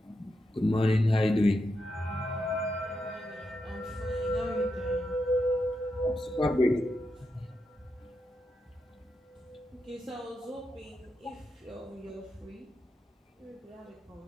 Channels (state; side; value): normal; both; correlation 0.85